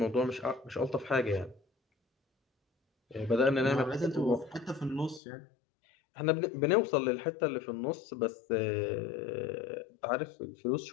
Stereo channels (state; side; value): drops out; right; at 5.2 s